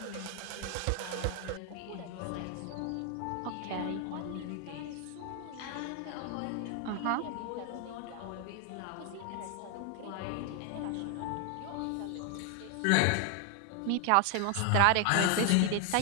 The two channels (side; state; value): both; different; correlation 0.01